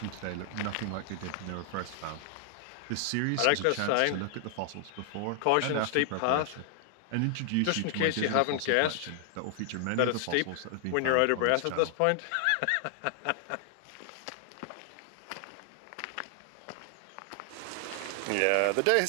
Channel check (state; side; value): different; both; correlation 0.00